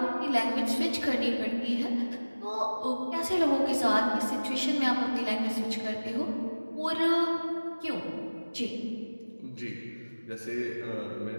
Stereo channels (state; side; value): inverted; both; correlation -1.00